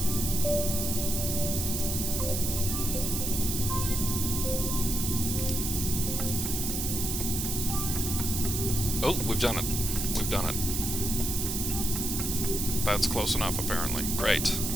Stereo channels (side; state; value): right; noise; hiss, 2 dB below the sound